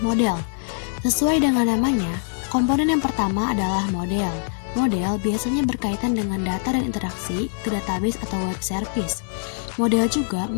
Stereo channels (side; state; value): right; silent; digital silence